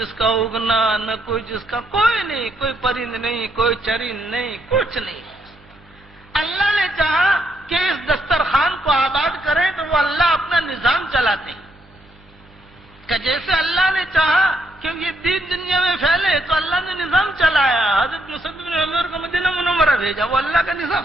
کا اگنا، نہ کوئی جس کا، کوئی نہیں، کوئی پرند نہیں، کوئی چرند نہیں، کچھ نہیں. اللہ نے چاہا کہ اس دسترخوان کو آباد کریں تو وہ اللہ اپنا نظام چلاتے ہیں کہ جیسے اللہ نے چاہا کہ یہ دین دنیا میں پھیلے تو اللہ نے نظام چلایا. حضرت مصعب بن عمر کو مدینہ منورہ بھیجا، وہ اللہ کا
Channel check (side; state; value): both; normal; correlation 0.75